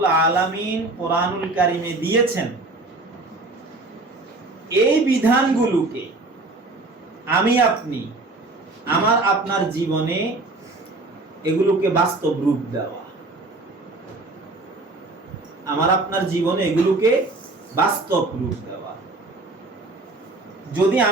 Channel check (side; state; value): left; quieter; 3.1 dB